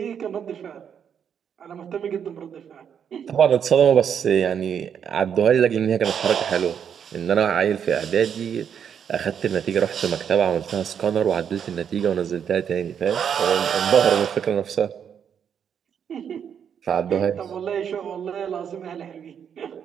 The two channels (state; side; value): quieter; left; 8.0 dB